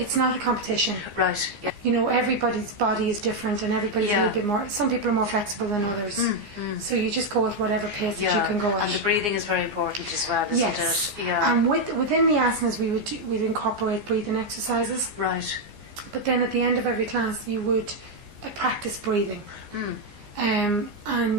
not a competition. Right. Yeah. Everybody's body is different, and everybody's a little bit more. Some people are more flexible than others. So you just go at whatever pace that you can go at. And the breathing is very important as well, isn't it? Yeah. And within the asanas, we'd incorporate breathing exercises. Right. But then at the end of every class, you would practice breathing. And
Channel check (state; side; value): late; left; 15 ms